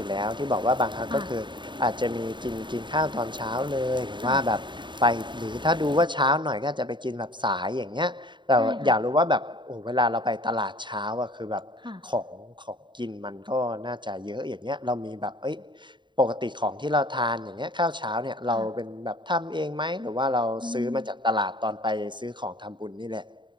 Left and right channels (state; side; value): late; left; 0.23 ms